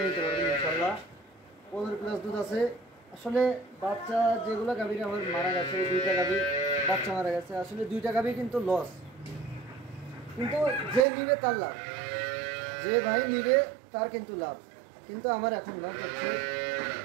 নিতে পারবেন ইনশাল্লাহ। 15 প্লাস দুধ আছে। আসলে বাচ্চা যেগুলো গাভীর আমার মারা গেছে, 2টা গাভী বাচ্চা মারা গেছে। আসলে 2টা গাভী কিন্তু লস, কিন্তু যে নিবে তার লাভ, যে ভাই নিবে তার কিন্তু লাভ। কিন্তু আমার এখন লস হচ্ছে।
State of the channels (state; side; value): drops out; left; at 11.1 s